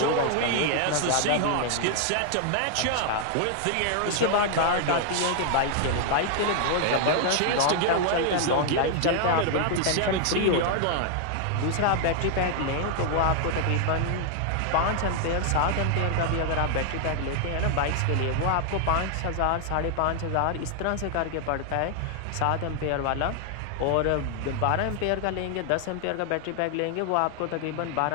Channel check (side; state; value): both; different; correlation 0.00